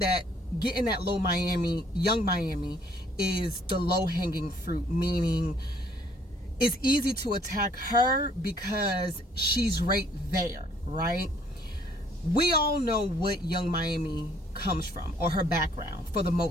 getting that Young Miami is the low-hanging fruit, meaning it's easy to attack her because she's right there, right? We all know what Young Miami comes from, or her background, for the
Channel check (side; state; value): both; normal; correlation 0.62